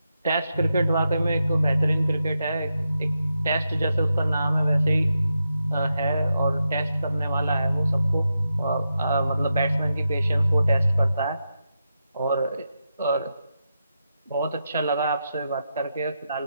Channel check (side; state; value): both; inverted; correlation -0.87